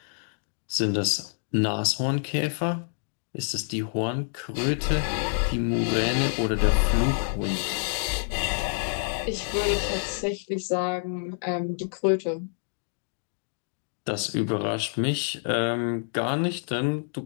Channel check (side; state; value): right; silent; digital silence